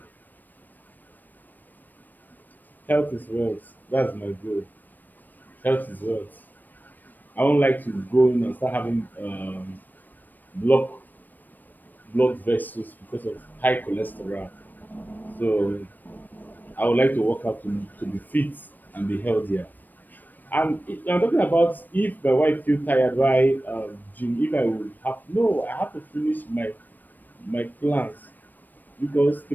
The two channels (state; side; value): late; right; 0.089 ms